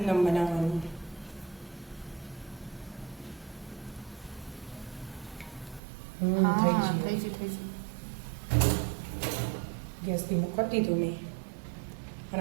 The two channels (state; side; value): drops out; left; at 5.8 s